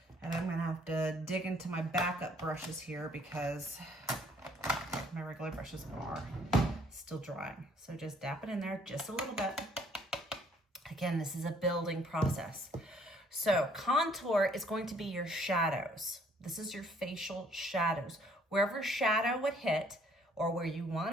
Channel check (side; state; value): both; normal; correlation 0.62